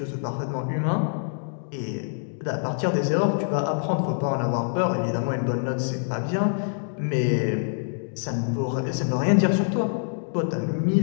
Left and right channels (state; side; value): silent; right; digital silence